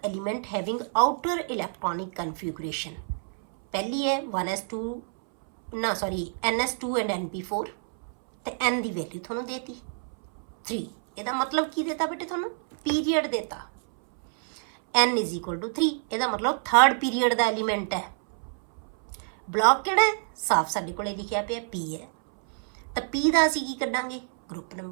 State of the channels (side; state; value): left; silent; 60 dB below the other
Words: element having outer electronic configuration। पहली है 1s2 ना सॉरी ns2 एंड np4 ਤੇ n ਦੀ ਵੈਲਿਊ ਤੁਹਾਨੂੰ ਦੇਤੀ 3। ਇਹਦਾ ਮਤਲਬ ਕੀ ਦੇਤਾ ਬੇਟੇ ਤੁਹਾਨੂੰ, ਪੀਰੀਅਡ ਦੇਤਾ n = 3, ਇਹਦਾ ਮਤਲਬ ਥਰਡ ਪੀਰੀਅਡ ਦਾ ਐਲੀਮੈਂਟ ਹੈ। ਬਲੌਕ ਕਿਹੜਾ ਹੈ, ਸਾਫ ਸਾਡੇ ਕੋਲੇ ਲਿਖਿਆ ਪਿਆ p ਹੈ, ਤਾਂ p ਦਾ ਅਸੀਂ ਕੀ ਕੱਢਾਂਗੇ, ਗਰੁੱਪ